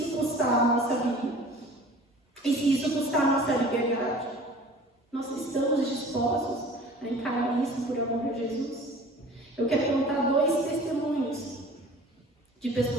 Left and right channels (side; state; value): both; normal; correlation 0.45